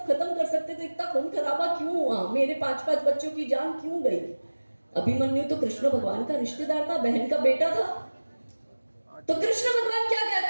खत्म कर सकते थे, इतना खून खराबा क्यों हुआ? मेरे 5-5 बच्चों की जान क्यों गई? अभिमन्यु तो कृष्ण भगवान का रिश्तेदार था, बहन का बेटा था। तो कृष्ण भगवान क्या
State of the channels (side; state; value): both; inverted; correlation -1.00